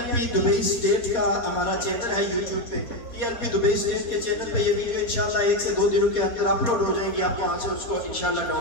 P Dubai state کا ہمارا چینل ہے یوٹیوب پہ P L P Dubai state کے چینل پہ یہ ویڈیو انشاءاللہ 1 سے 2 دنوں کے اندر اپلوڈ ہو جائیں گی آپ وہاں سے اس کو انشاءاللہ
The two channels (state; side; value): late; right; 4.2 ms